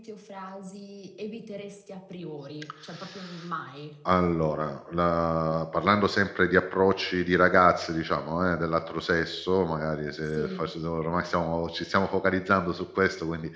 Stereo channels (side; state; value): both; identical; correlation 1.00